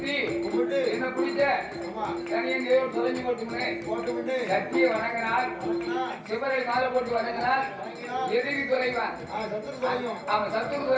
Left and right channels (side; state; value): both; identical; correlation 1.00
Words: என்ன பிடிச்ச தனியன் தேவன் தொலைஞ்சு போட்டு சக்தியை வணங்கினால், சிவரை மாலை போட்டு வணங்கினால் எதிரி குறைவான். ஆமா, சத்துரு